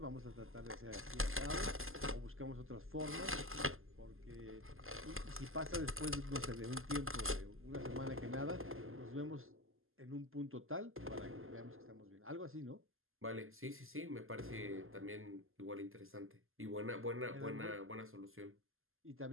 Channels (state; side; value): late; left; 0.60 ms